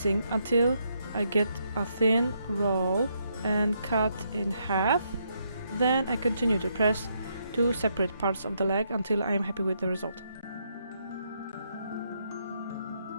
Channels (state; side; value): inverted; both; correlation -0.77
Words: until I get a thin roll and cut in half. Then I continue to press 2 separate parts of the leg until I am happy with the result.